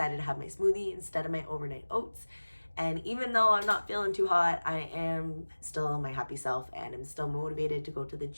to have my smoothie instead of my overnight oats. And even though I'm not feeling too hot, I am still my happy self and I'm still motivated to go to the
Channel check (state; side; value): inverted; both; correlation -1.00